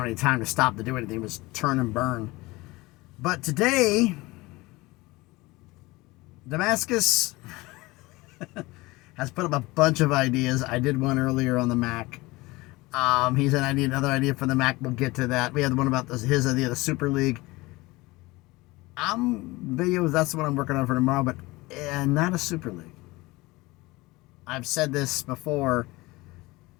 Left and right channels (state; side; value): quieter; right; 21.6 dB